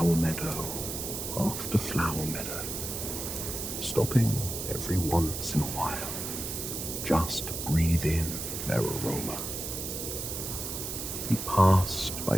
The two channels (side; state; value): right; noise; hiss, 5 dB below the sound